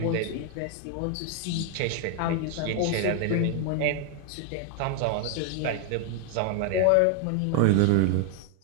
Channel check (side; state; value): both; different; correlation 0.00